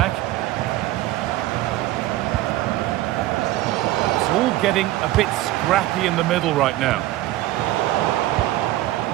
It's all getting a bit scrappy in the middle right now.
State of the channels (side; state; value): left; quieter; 15.9 dB